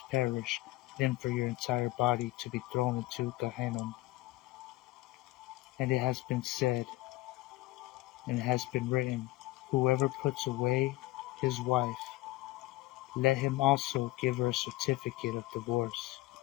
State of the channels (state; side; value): quieter; right; 18.5 dB